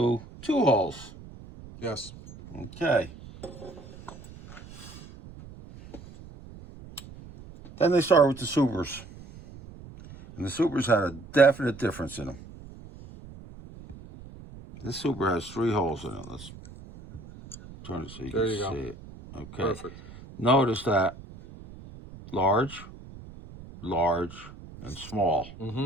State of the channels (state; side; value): noise; right; rumble, 17 dB below the sound